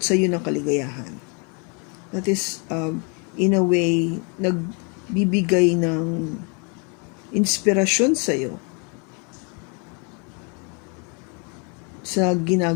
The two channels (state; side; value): quieter; right; 34.9 dB